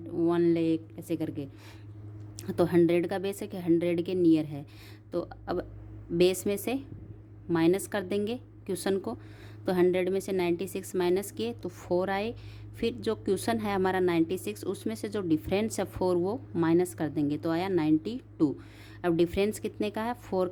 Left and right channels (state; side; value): identical; both; correlation 1.00